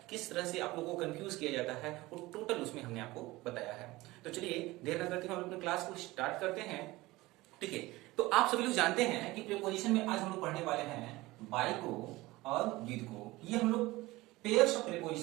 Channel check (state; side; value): quieter; left; 19.8 dB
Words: किस तरह से आप लोगों को कंफ्यूज किया जाता है, वो टोटल उसमें हमने आपको बताया है। तो चलिए देर न करते हुए हम अपने क्लास को स्टार्ट करते हैं, ठीक है। तो आप सभी लोग जानते हैं कि प्रीपोजिशन में आज हम लोग पढ़ने वाले हैं बाय को और विद को। ये हम लोग पेयर्स ऑफ